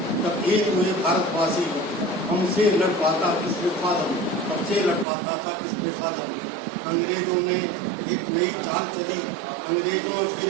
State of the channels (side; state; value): left; drops out; at 5.1 s